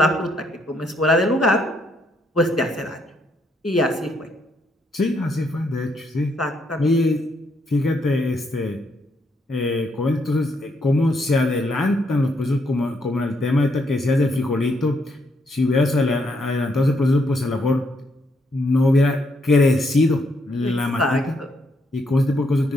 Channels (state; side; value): normal; both; correlation 0.75